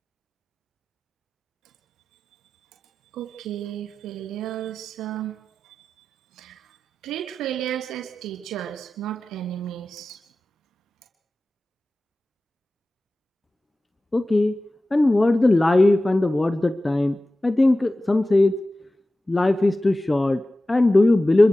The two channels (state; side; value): normal; both; correlation 0.95